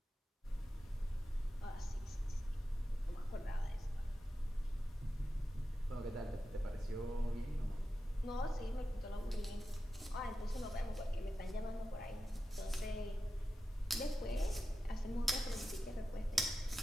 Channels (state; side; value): normal; both; correlation 0.92